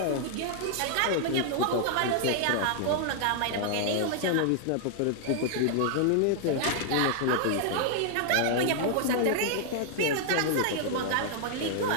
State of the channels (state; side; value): different; both; correlation -0.01